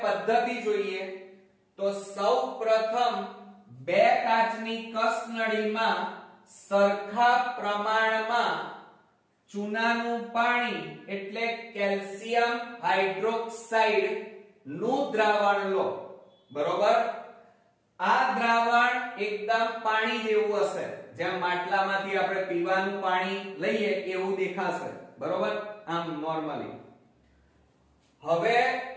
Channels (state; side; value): identical; both; correlation 1.00